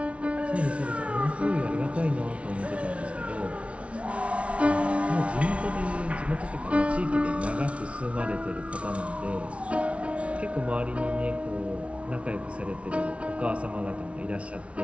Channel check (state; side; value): late; left; 0.062 ms